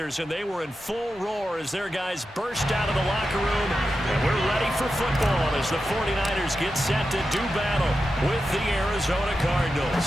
and they were in full roar as their guys burst out of the locker room. And we're ready for football as the 49ers get set to do battle with the Arizona Cardinals.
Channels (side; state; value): both; normal; correlation 0.90